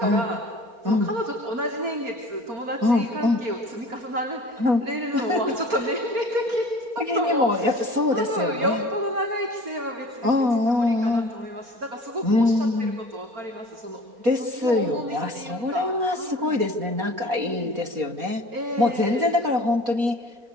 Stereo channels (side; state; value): left; late; 4.3 ms